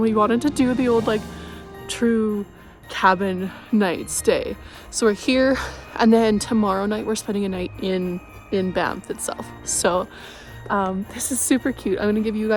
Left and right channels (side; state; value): both; identical; correlation 1.00